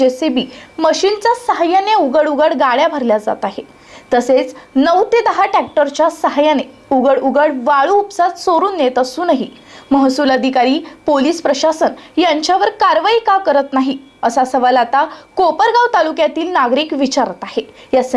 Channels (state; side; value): identical; both; correlation 1.00